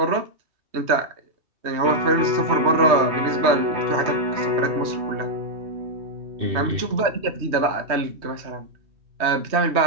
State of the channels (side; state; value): left; late; 3.1 ms